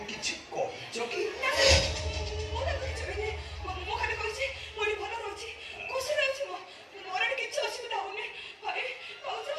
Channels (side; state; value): both; identical; correlation 1.00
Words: କିଛି କହିଛ କି ମୁଁ ଖାଲି କହିଛି ମୁଁ ଏଠି ଭଲ ରହୁଛି ଖୁସିରେ ଅଛି ମୋର ଏଠି କିଛି ଅସୁବିଧା ହଉନି ଭାଇ ଭାଉଜ